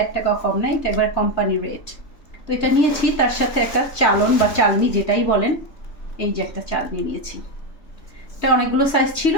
1 টাকাও কম নাই, এটা একবার কোম্পানি রেট। তো এটা নিয়েছি, তার সাথে একটা চালন বা চালনি যেটাই বলেন, এই যে একটা চালনি নিয়েছি। এটা অনেকগুলো সাইজ ছিল,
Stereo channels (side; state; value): right; late; 3.5 ms